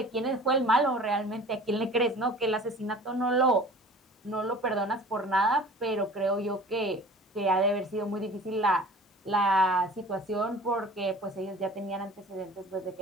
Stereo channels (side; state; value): both; normal; correlation 0.44